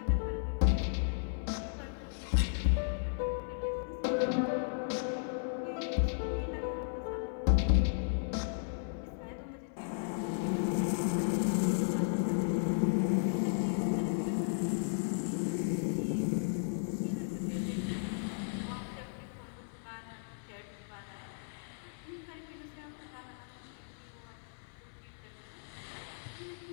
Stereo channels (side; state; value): right; silent; digital silence